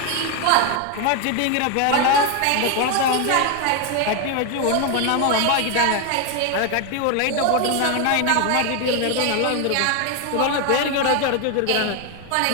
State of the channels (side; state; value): both; different; correlation 0.01